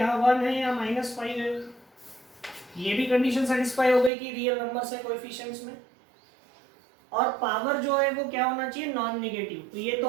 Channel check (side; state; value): left; drops out; at 4.1 s